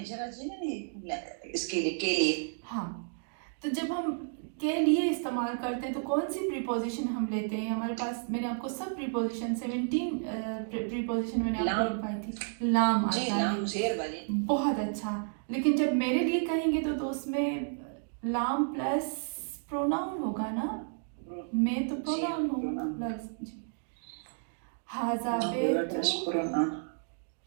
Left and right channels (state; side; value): silent; left; digital silence